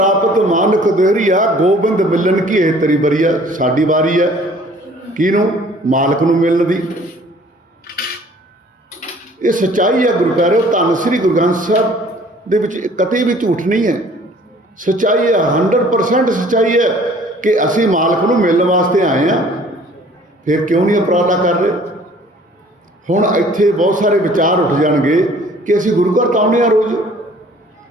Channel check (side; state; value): both; normal; correlation 0.54